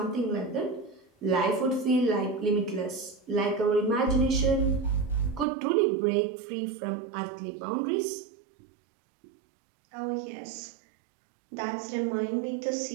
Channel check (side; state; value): left; drops out; at 5.5 s